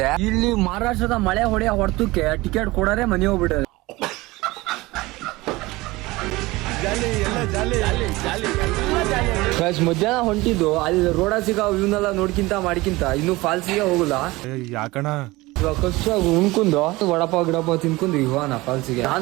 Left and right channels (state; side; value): quieter; left; 20.8 dB